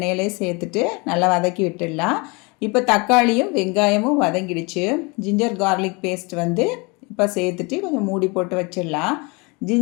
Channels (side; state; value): right; quieter; 28.6 dB